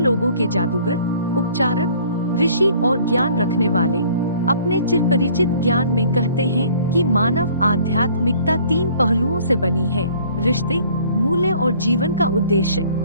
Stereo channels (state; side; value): inverted; both; correlation -0.55